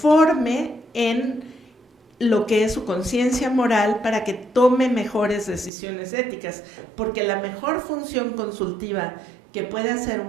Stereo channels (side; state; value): left; drops out; at 5.7 s